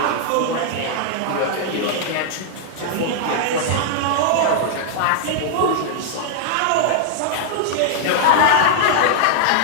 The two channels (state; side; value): different; both; correlation -0.01